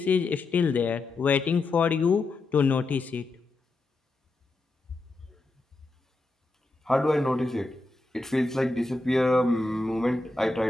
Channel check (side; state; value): right; quieter; 3.2 dB